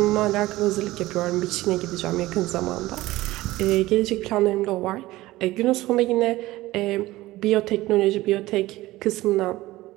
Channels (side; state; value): left; quieter; 17.8 dB